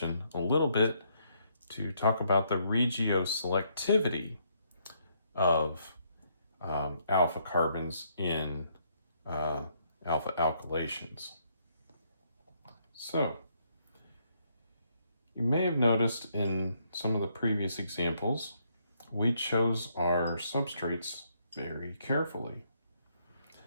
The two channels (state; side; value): inverted; both; correlation -0.72